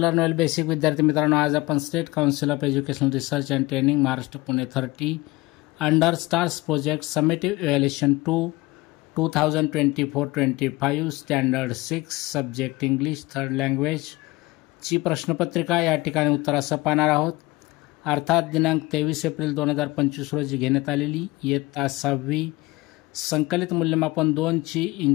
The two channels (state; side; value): quieter; right; 21.2 dB